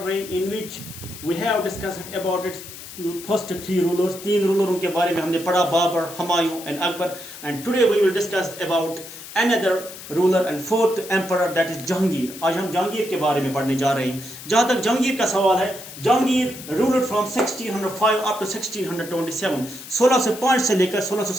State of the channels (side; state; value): left; noise; hiss, 14 dB below the sound